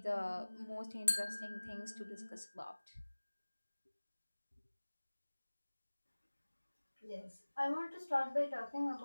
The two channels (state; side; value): inverted; both; correlation -1.00